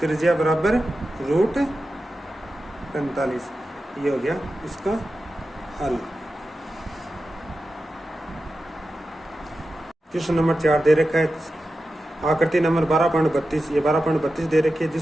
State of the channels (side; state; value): both; normal; correlation 0.92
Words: बराबर √45। ये हो गया इसका हल। क्वेश्चन नंबर 4 दे रखा है आकृति नंबर 12.32, ये 12.32 दे रखी है